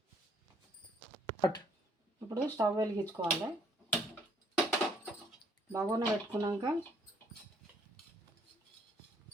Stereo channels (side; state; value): both; normal; correlation 0.64